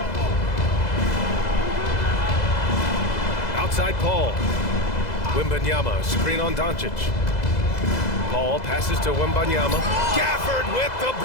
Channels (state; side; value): late; right; 2.0 ms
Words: Outside Paul. Wembanyama, screen on Doncic. Paul passes to Wembanyama. Gafford with the